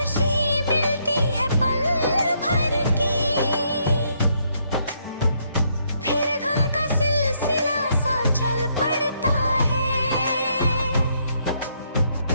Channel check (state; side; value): inverted; both; correlation -0.73